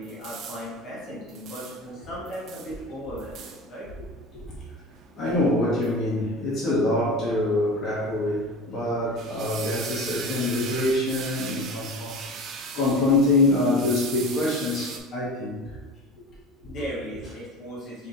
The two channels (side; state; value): both; normal; correlation 0.33